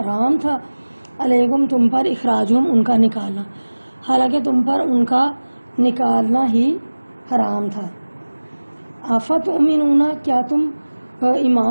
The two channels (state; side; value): inverted; both; correlation -1.00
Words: تھا، علیکم تم پر، اخراجہم ان کا نکالنا، حالانکہ تم پر ان کا نکالنا ہی حرام تھا۔ افتؤمنون کیا تم